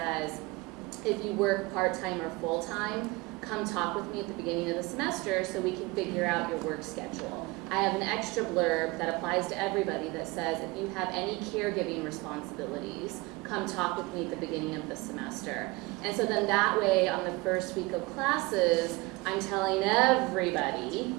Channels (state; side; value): quieter; left; 23.3 dB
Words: if you work part-time or full-time, come talk with me at the beginning of the semester so we can figure out your work schedule. I have an extra blurb that applies to everybody that says, if you have any caregiving responsibilities, come talk with me at the beginning of the semester. And so then that way, on the first week of classes, I'm telling everybody,